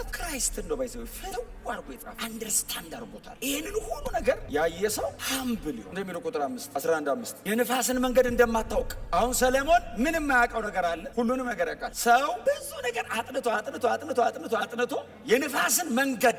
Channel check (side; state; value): both; identical; correlation 1.00